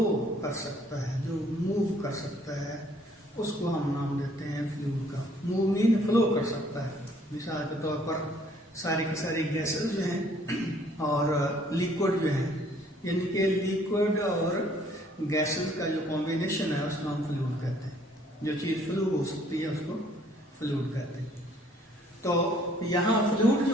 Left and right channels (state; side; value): normal; both; correlation 0.61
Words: कर सकता है, जो मूव कर सकता है, उसको हम नाम देते हैं फ्लूइड का। मूव मीन फ्लो कर सकता है। मिसाल के तौर पर सारी की सारी गैसेस जो हैं और लिक्विड जो हैं, यानी कि लिक्विड और गैसेस का जो कॉम्बिनेशन है उसको हम फ्लूइड कहते हैं। जो चीज़ फ्लू हो सकती है उसको फ्लूइड कहते हैं। तो यहाँ फ्लूइड